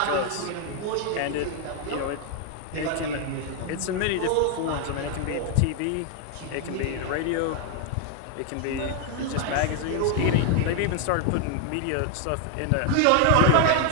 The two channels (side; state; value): both; different; correlation 0.01